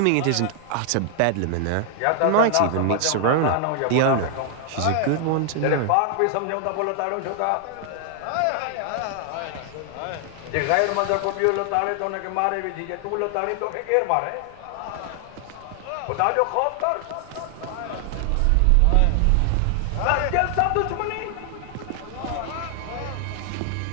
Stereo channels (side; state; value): both; different; correlation 0.00